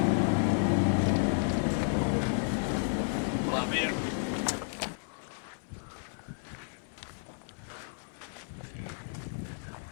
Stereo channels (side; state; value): right; silent; digital silence